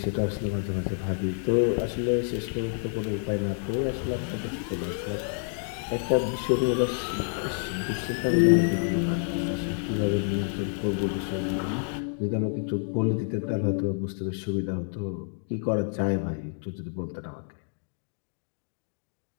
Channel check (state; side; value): silent; right; 59 dB below the other